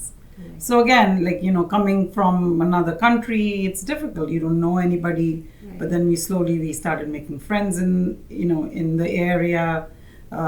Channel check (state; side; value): identical; both; correlation 1.00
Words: Right. So again, like, coming from another country, it's difficult. You don't know anybody. But then we started making friends in the area.